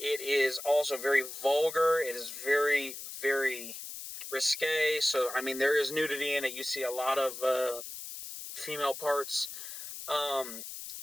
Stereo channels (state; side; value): noise; left; hiss, 10 dB below the sound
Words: it is also very vulgar. It is very, very risque. So, there is nudity in it. You see a lot of female parts.